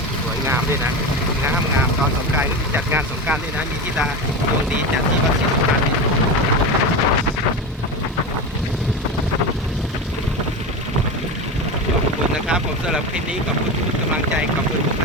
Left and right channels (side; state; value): both; normal; correlation 0.23